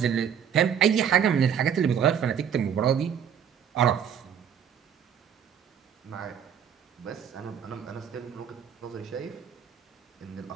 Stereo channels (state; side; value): quieter; left; 8.3 dB